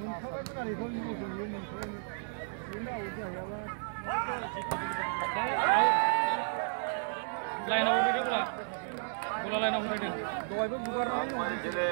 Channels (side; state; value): left; silent; digital silence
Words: Line out dia pula. Bola line out dia. Dua itu bukan line out.